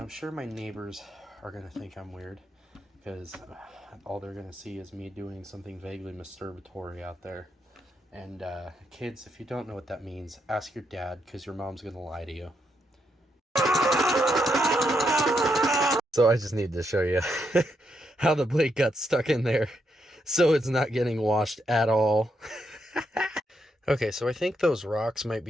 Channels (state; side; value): normal; both; correlation 0.80